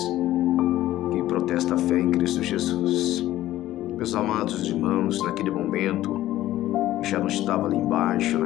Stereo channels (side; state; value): right; quieter; 14.5 dB